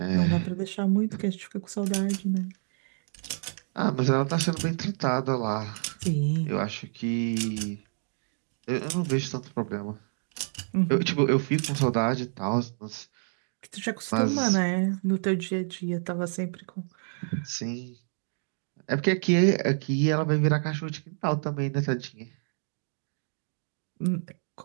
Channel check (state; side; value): silent; left; digital silence